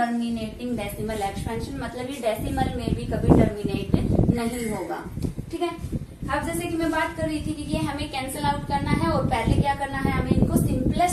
डेसिमल एक्सपेंशन, मतलब ये डेसिमल में भी कभी टर्मिनेट नहीं होगा, ठीक है। अब जैसे कि मैं बात कर रही थी कि ये हमें कैंसिल आउट करना है और पहले क्या करना है हमें इनको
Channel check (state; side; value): identical; both; correlation 1.00